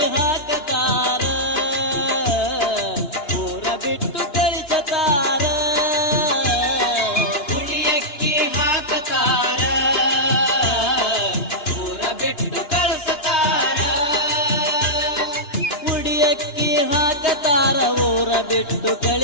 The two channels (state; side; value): late; right; 2.9 ms